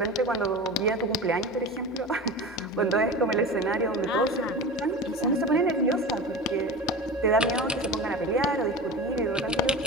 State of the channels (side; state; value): both; normal; correlation 0.31